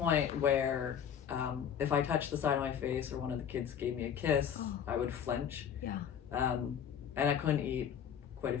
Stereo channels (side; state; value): right; quieter; 8.5 dB